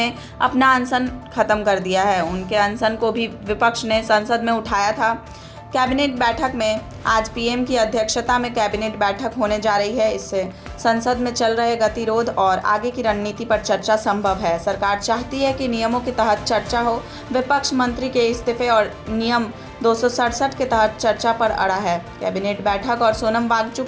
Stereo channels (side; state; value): both; identical; correlation 1.00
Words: अपना अनशन खत्म कर दिया है। उनके अनशन को भी विपक्ष ने संसद में उठाया था। कैबिनेट बैठक में आज पीएम की अध्यक्षता में कैबिनेट बैठक होने जा रही है। इससे संसद में चल रहे गतिरोध और आगे की रणनीति पर चर्चा संभव है। सरकार चाहती है कि नियमों के तहत चर्चा हो। विपक्ष मंत्री के इस्तीफे और नियम 267 के तहत चर्चा पर अड़ा है। कैबिनेट बैठक और सोनम